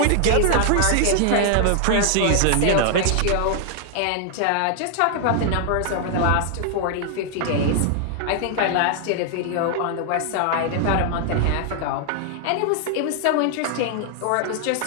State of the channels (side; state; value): both; different; correlation 0.00